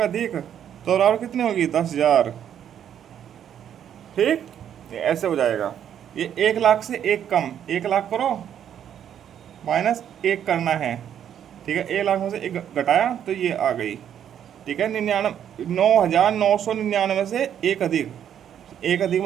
अधिक, तो बराबर कितनी होगी? 10,000। ठीक, ये ऐसे हो जाएगा। ये 1 लाख से 1 कम, 1 लाख करो माइनस 1 करना है। ठीक है, 1 लाख में से 1 घटाया तो ये आ गई। ठीक है, 9,999 से एक अधिक, एक अधिक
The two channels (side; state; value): left; quieter; 9.5 dB